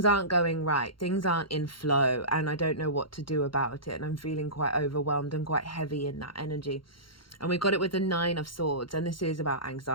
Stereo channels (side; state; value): right; late; 0.73 ms